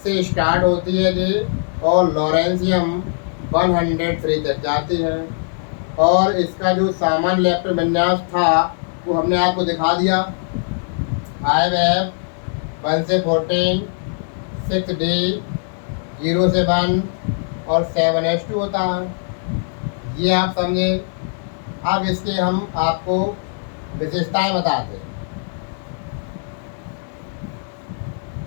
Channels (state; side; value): silent; right; digital silence